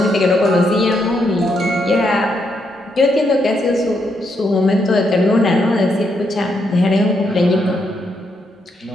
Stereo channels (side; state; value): both; normal; correlation 0.78